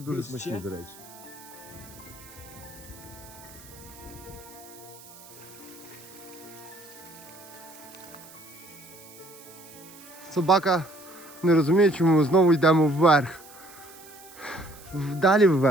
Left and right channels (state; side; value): noise; right; hiss, 20 dB below the sound